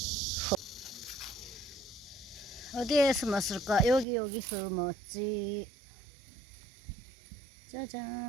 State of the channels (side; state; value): left; drops out; at 4.0 s